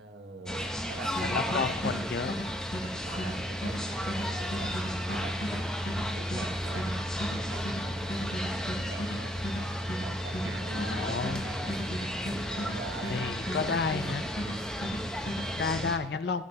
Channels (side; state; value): both; normal; correlation 0.62